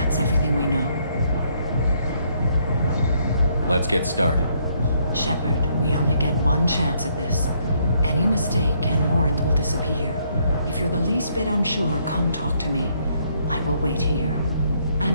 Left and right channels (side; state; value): both; inverted; correlation -0.70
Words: everything we know. Let's get started. Shepard, we only get one chance at this. Any mistake and Morinth will disappear. If you're the least bit unsure, come talk to me. I will wait here. And